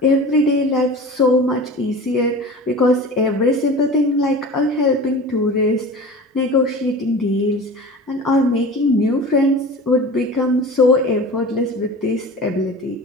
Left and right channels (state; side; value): normal; both; correlation 0.36